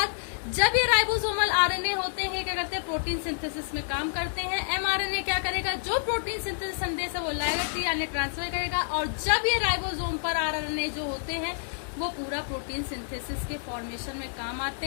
जब ये राइबोसोमल आरएनए होते हैं क्या करते हैं? प्रोटीन सिंथेसिस में काम करते हैं। एमआरएनए क्या करेगा? जो प्रोटीन सिंथेसिस संदेश है वो लाएगा, टीआरएनए ट्रांसफर करेगा। और जब ये राइबोसोम पर आरएनए जो होते हैं वो पूरा प्रोटीन सिंथेसिस के फॉर्मेशन में काम आते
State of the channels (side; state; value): right; silent; 59 dB below the other